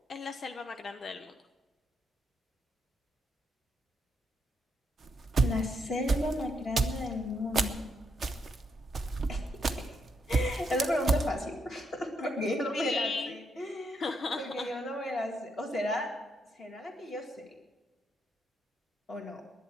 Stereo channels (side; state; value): both; normal; correlation 0.78